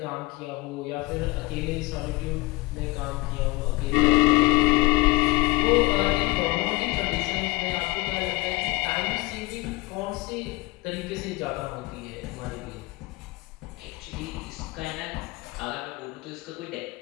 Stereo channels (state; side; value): quieter; right; 22.1 dB